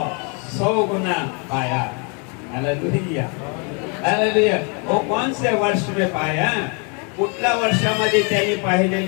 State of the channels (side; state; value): right; quieter; 35.2 dB